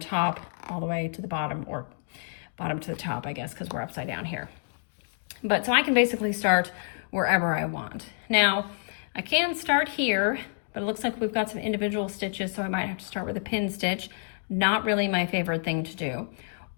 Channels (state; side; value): silent; right; digital silence